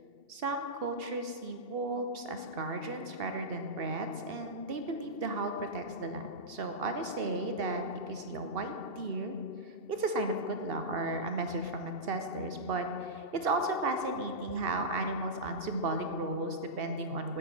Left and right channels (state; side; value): late; left; 2.7 ms